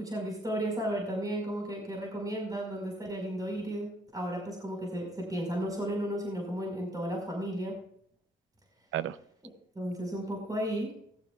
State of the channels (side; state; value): both; normal; correlation 0.65